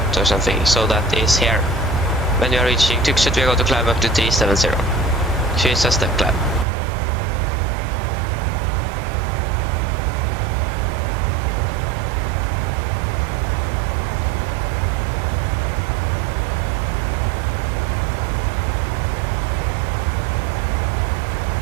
or something. So that is here. When we are reaching Tromsø, we're going to climb up to 370. So it's a step climb.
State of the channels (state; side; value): drops out; left; at 6.7 s